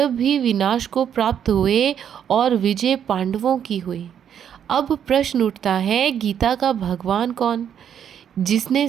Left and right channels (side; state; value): left; quieter; 8.9 dB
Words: भी विनाश को प्राप्त हुए और विजय पांडवों की हुई। अब प्रश्न उठता है, गीता का भगवान कौन? जिसने